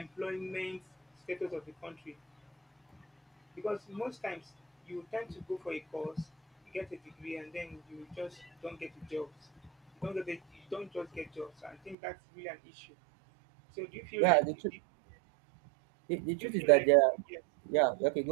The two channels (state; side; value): drops out; left; at 12.0 s